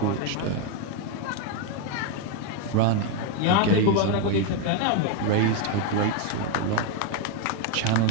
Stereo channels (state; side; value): different; both; correlation 0.02